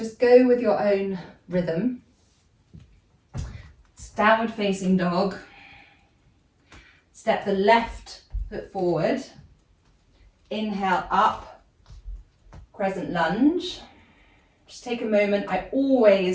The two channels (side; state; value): both; identical; correlation 1.00